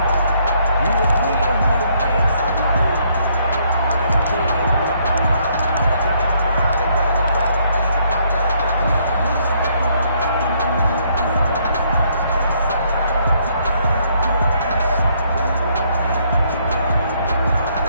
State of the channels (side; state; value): both; inverted; correlation -0.69